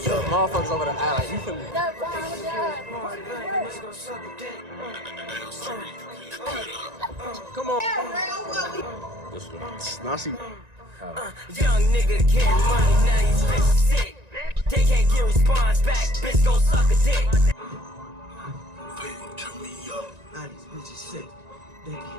over there act like, you feel me? Come on. This one. Now she. Young nigga getting money, now these bitches sick. They can't get response back, bitch gon' suck a dick. Turn me up. Now these bitches sick. They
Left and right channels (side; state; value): left; late; 1.9 ms